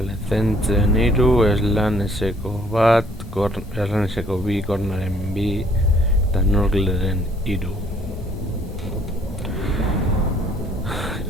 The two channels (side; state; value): both; normal; correlation 0.61